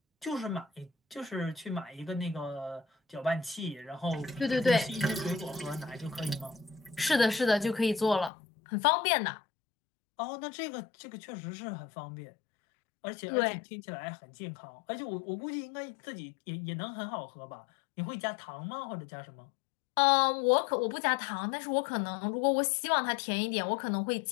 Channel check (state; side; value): drops out; right; at 8.3 s